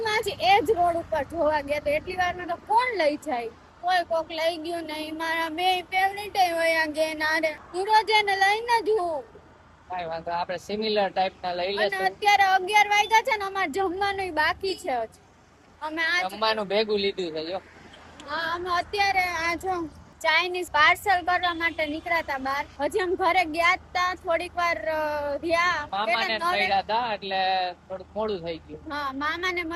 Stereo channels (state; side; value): identical; both; correlation 1.00